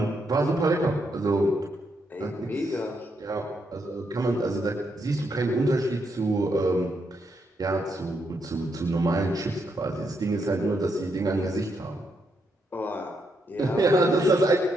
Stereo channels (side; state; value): both; normal; correlation 0.79